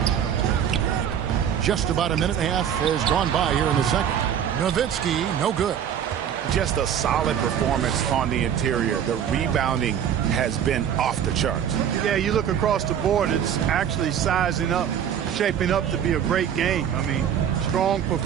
Just about a minute and a half has gone by here in the second. Nowitzki, no good. Just a solid performance on the interior. The rebounding has been off the charts. Yeah, you look across the board, it's actually sizing up, shaping up to be a great game. I mean, strong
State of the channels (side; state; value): left; quieter; 9.0 dB